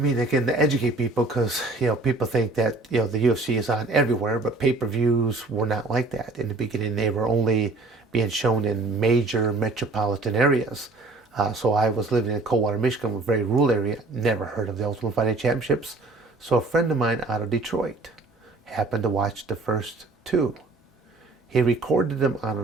again, to educate people, because people think that the UFC is on everywhere, but pay-per-views were not like that in the beginning. They were only being shown in major metropolitan areas. So I was living in Coldwater, Michigan, a very rural area. Never heard of the Ultimate Fighting Championships. So a friend of mine out of Detroit happened to watch the first two. He recorded them on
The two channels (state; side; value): quieter; left; 3.3 dB